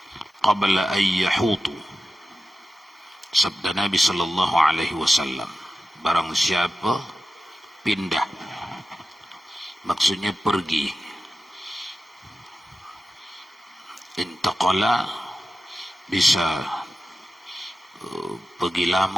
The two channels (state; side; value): normal; both; correlation 0.93